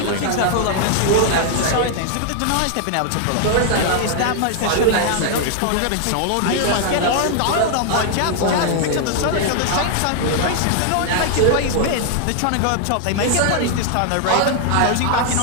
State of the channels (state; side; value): different; both; correlation 0.00